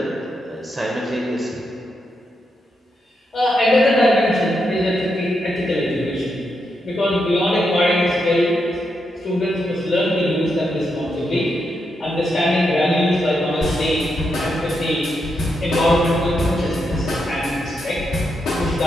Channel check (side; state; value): both; normal; correlation 0.83